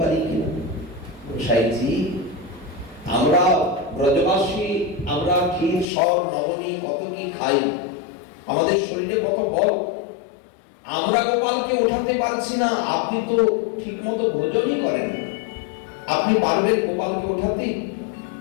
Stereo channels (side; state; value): right; drops out; at 5.9 s